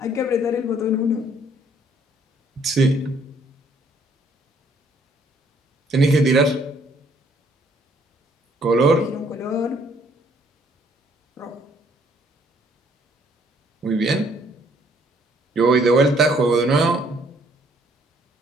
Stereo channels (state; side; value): normal; both; correlation 0.64